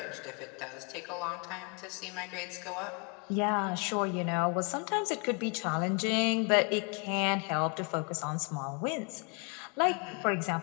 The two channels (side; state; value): right; quieter; 34.6 dB